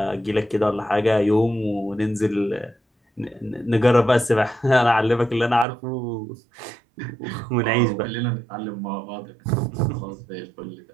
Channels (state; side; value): drops out; left; at 5.7 s